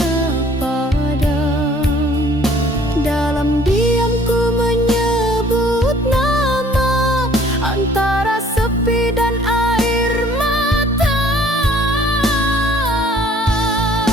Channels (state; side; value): normal; both; correlation 0.56